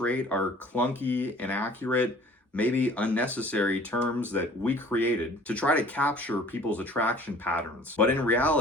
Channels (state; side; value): normal; both; correlation 0.50